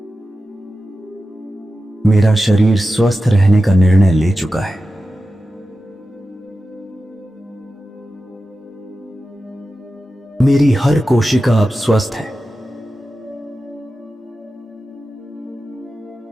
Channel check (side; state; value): both; normal; correlation 0.93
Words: मेरा शरीर स्वस्थ रहने का निर्णय ले चुका है। मेरी हर कोशिका अब स्वस्थ है।